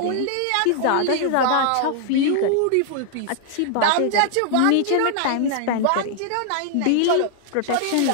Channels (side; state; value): both; different; correlation 0.00